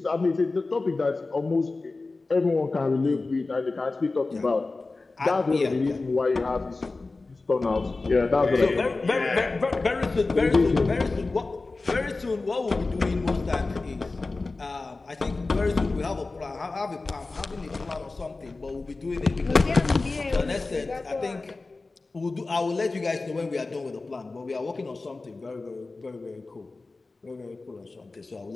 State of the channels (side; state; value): right; quieter; 3.5 dB